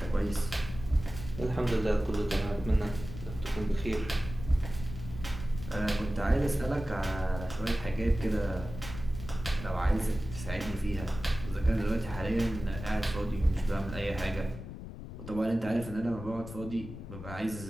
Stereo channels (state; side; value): noise; left; rumble, 11 dB below the sound